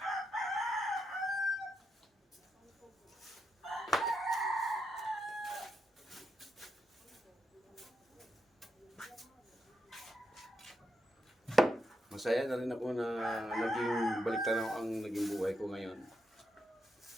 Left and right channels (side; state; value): both; normal; correlation 0.82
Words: Masaya na rin ako na naging baliktanaw ang naging buhay ko ngayon.